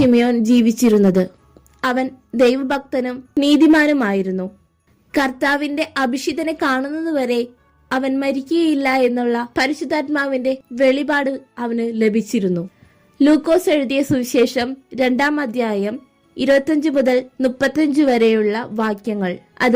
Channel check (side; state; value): both; identical; correlation 1.00